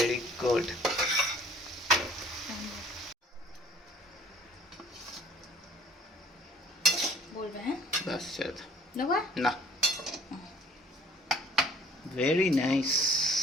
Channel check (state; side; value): normal; both; correlation 0.55